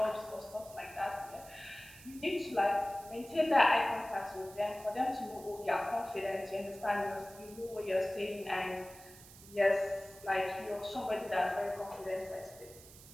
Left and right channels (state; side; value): noise; right; hiss, 19 dB below the sound